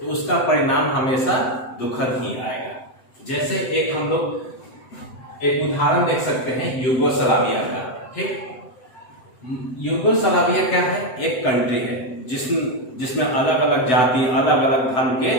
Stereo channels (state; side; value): late; right; 7.9 ms